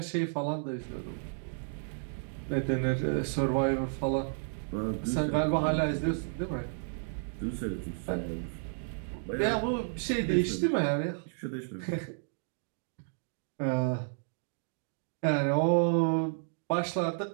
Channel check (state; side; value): silent; left; digital silence